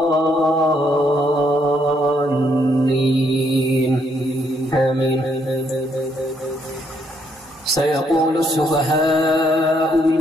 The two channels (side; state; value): both; normal; correlation 0.72